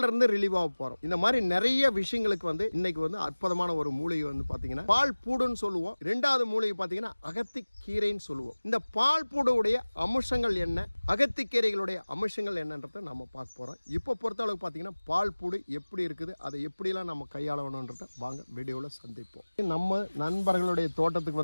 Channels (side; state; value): both; inverted; correlation -1.00